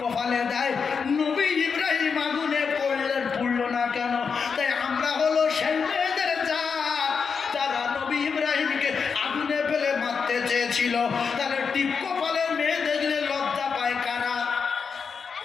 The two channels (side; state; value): right; quieter; 5.8 dB